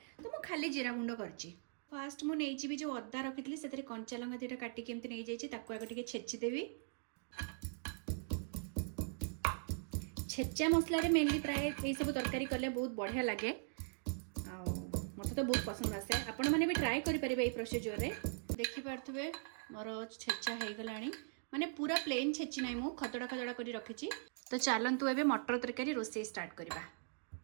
तो मु खाली जीरा गुंड करछि। फास्ट मु नेइछि भी जो अद्दा रखितली सेतरे कंचा लंका दुटा काटी के एमती नै जाइछि ताको आगे टिके छेची देबी। छेचा मसला रे मेनली प्राय ए सब तरकारी करले बहुत बढ़िया लागे आ मते तो बहुत पसंद आसे। आपण माने भी ट्राई करि परिबे ए प्रोसीजर रे। देखि पारथबे मोर छेचा हे गलानी माने पूरा प्लेन छेची नै मु खतडा खतडा करी रखिछि। तो चलंतु एबे मटर तरकारी रोसई स्टार्ट करबा।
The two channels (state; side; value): silent; left; digital silence